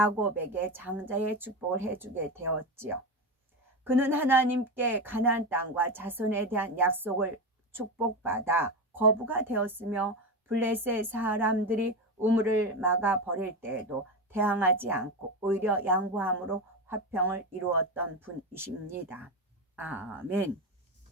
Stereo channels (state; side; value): normal; both; correlation 0.17